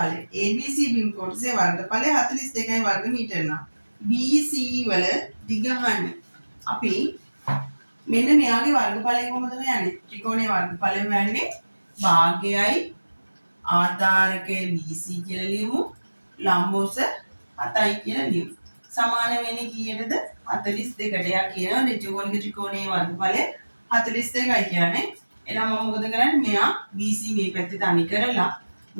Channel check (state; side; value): inverted; both; correlation -1.00